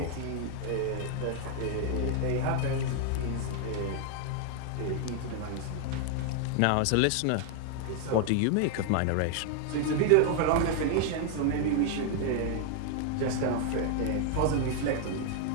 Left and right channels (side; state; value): both; different; correlation 0.00